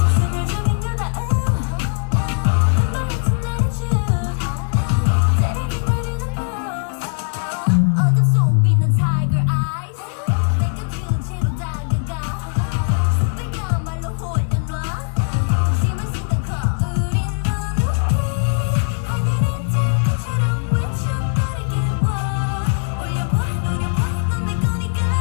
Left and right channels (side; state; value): right; silent; 63 dB below the other